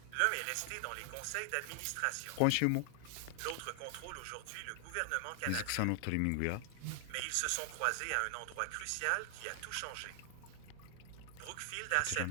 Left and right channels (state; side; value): different; both; correlation 0.00